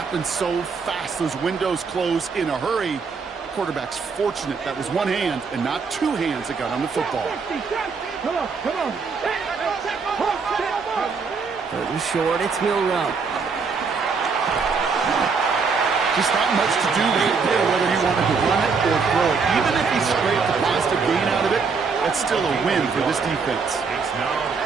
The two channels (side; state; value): left; quieter; 5.1 dB